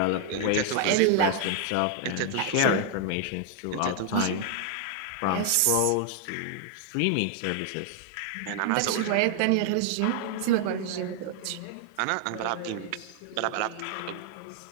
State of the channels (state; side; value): different; both; correlation 0.00